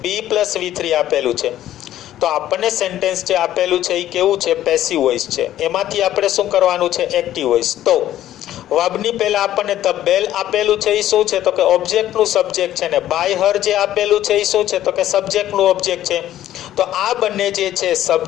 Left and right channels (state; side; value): quieter; right; 12.7 dB